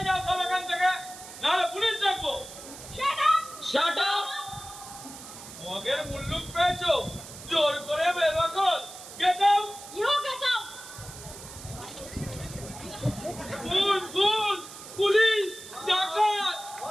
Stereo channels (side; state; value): right; noise; hiss, 14 dB below the sound